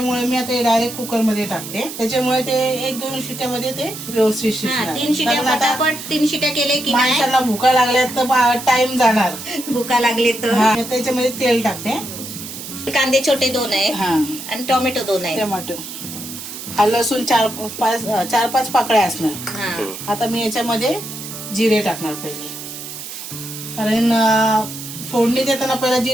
मी आता डायरेक्ट कुकर मध्ये टाकते. त्याच्यामुळे ते 1-2 शिट्यामध्ये ते व्यवस्थित शिजणार. 3 शिट्या पटापट 3 शिट्या केले की माणसाला भुका लागल्या तर टाइम जाणार. भुका लागले तर त्याच्यामध्ये तेल टाकते. कांदे छोटे 2 आहे आणि टोमॅटो 2 आहे. टोमॅटो, हा लसूण 4-5 पाकळ्या असणार. आता मी याच्यामध्ये जिरे टाकणार पहिले, कारण फोडणी देताना पहिला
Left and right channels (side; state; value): right; noise; hiss, 10 dB below the sound